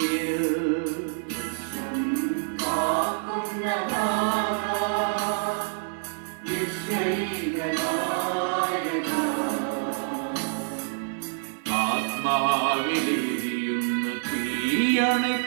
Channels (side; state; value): left; silent; digital silence